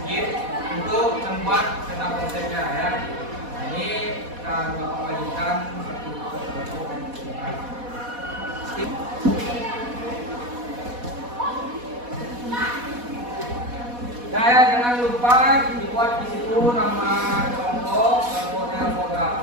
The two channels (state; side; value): late; left; 4.1 ms